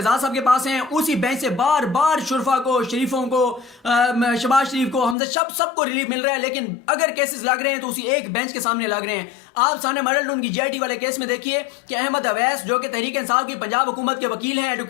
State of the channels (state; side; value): drops out; right; at 5.2 s